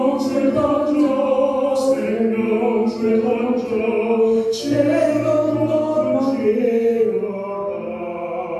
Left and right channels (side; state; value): both; identical; correlation 1.00